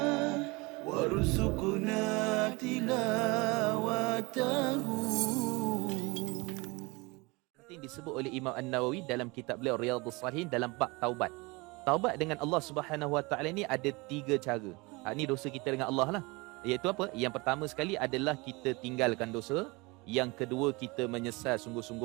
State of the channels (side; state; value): left; quieter; 25.5 dB